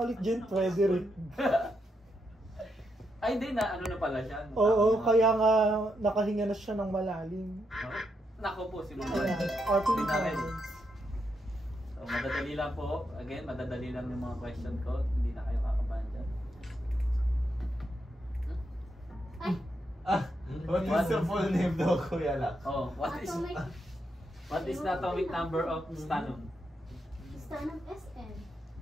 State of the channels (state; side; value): normal; both; correlation 0.81